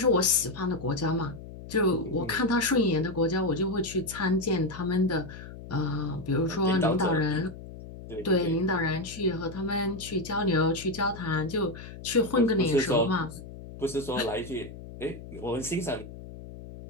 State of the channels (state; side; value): noise; left; hum, 14 dB below the sound